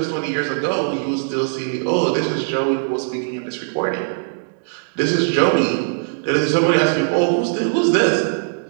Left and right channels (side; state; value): left; silent; digital silence